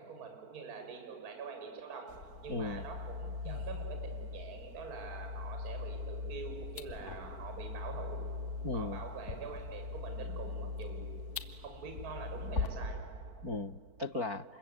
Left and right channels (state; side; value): late; left; 4.5 ms